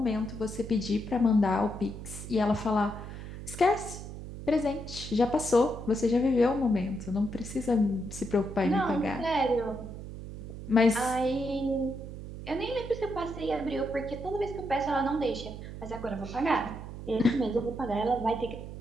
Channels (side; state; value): right; noise; hum, 10 dB below the sound